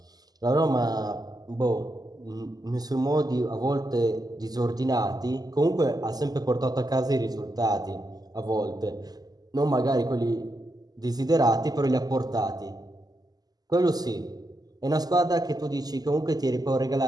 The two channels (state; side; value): late; left; 0.19 ms